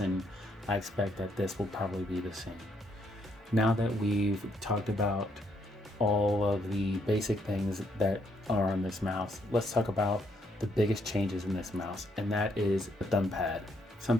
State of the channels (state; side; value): normal; both; correlation 0.72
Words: I expect that this will probably be the same. Now that we've talked about all of the basic things that are on this mouse, let's talk about the biggest changes in this mouse, and that is the thumb pad.